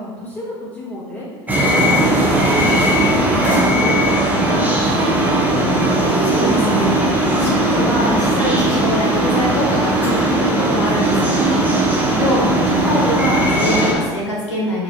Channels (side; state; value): both; normal; correlation 0.39